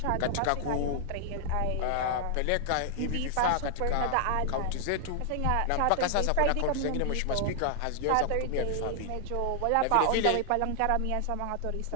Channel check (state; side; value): different; both; correlation 0.00